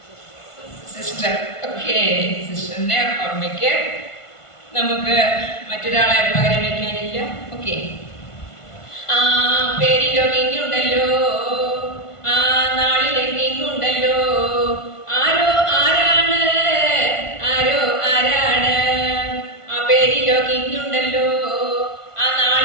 സിസ്റ്റർ. ഓക്കെ, സിസ്റ്ററിന്റെ ഓർമ്മയ്ക്ക് നമുക്ക് മറ്റൊരാളെ പകരം വയ്ക്കാനില്ല. ഓക്കെ, ആ പേരിലോ കിങ്ങുണ്ടല്ലോ, ആ നാളിലെ കിങ്ങുണ്ടല്ലോ, ആരോ ആരാണ്, ആരോ ആരാണ്, ആ പേരിലോ കിങ്ങുണ്ടല്ലോ, ആ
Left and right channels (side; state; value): right; late; 1.5 ms